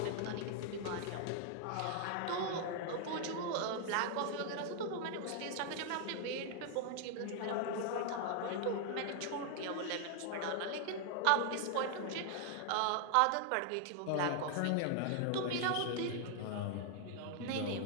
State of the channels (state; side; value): different; both; correlation 0.00